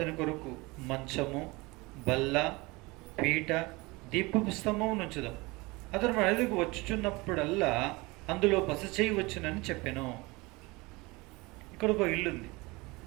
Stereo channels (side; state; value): left; quieter; 23.9 dB